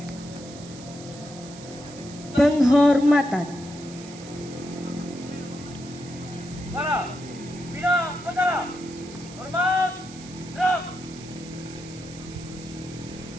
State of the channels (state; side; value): noise; right; hiss, 17 dB below the sound